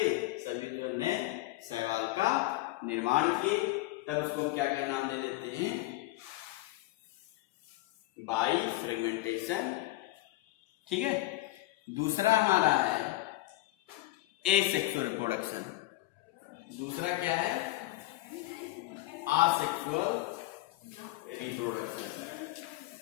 सभी जो नए शैवाल का निर्माण किए। तब उसको क्या क्या नाम दे देते हैं, बाइफ्रेगमेंटेशन। ठीक है, दूसरा हमारा है एसेक्सुअल रिप्रोडक्शन। दूसरा क्या है, असेक्सुअल रिप्रोडक्शन।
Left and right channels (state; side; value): quieter; right; 18.1 dB